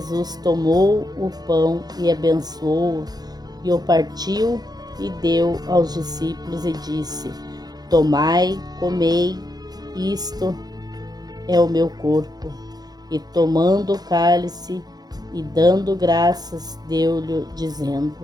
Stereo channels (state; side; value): late; left; 0.19 ms